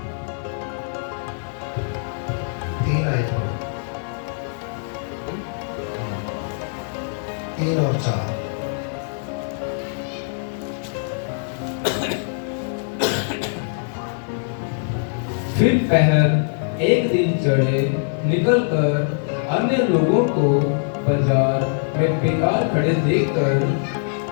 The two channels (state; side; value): silent; right; digital silence